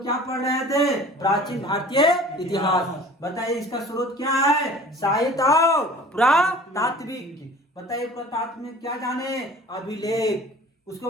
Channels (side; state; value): both; normal; correlation 0.45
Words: क्या पढ़ रहे थे? प्राचीन भारतीय इतिहास। बताइए इसका स्रोत क्या है? साहित्य और पुरातात्विक। बताइए पुरातात्व में क्या जाने? अभिलेख, उसके